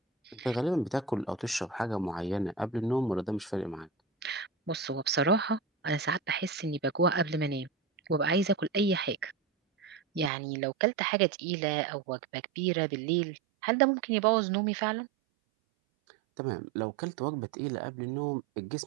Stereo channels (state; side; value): drops out; left; at 10.3 s